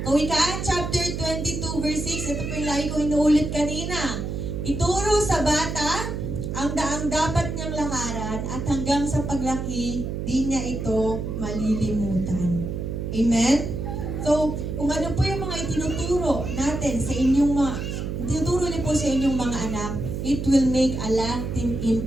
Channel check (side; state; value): right; noise; hum, 4 dB below the sound